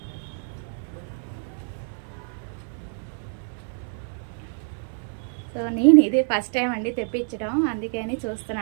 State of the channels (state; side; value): silent; left; 61 dB below the other